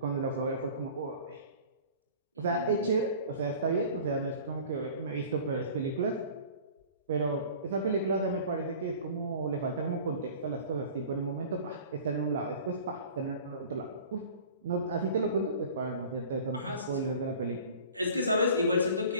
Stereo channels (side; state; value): both; inverted; correlation -0.45